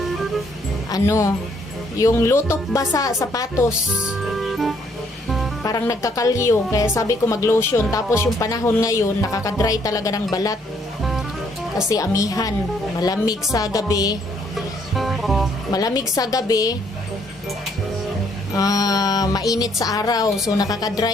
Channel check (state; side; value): normal; both; correlation 0.67